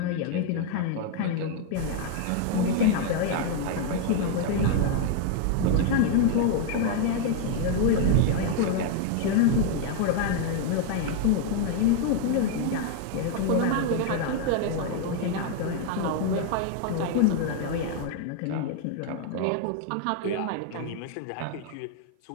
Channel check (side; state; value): both; different; correlation 0.00